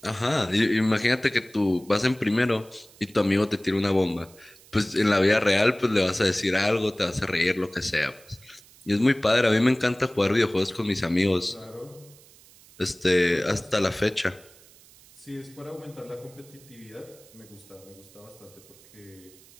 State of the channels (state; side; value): noise; right; hiss, 25 dB below the sound